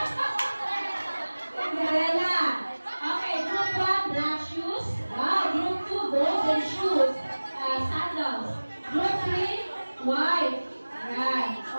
Cinderella. Okay, group 1, black shoes. Wow, group 2, golden shoes. Sandals. Group 3, white. Ayan. O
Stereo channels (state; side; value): inverted; both; correlation -1.00